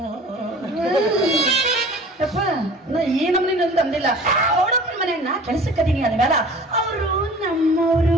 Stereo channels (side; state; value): both; normal; correlation 0.44